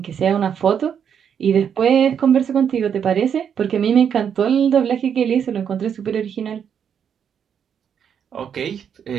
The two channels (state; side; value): quieter; left; 7.9 dB